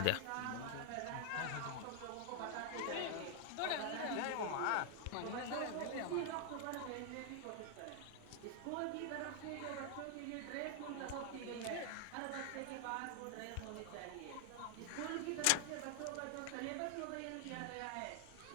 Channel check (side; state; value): both; different; correlation 0.00